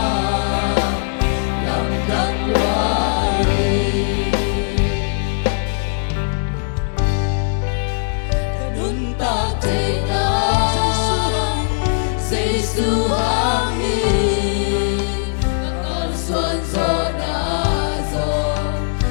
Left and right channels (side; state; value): right; silent; digital silence